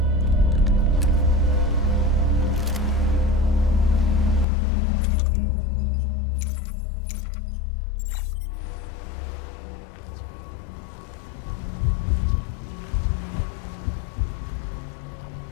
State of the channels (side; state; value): right; drops out; at 4.5 s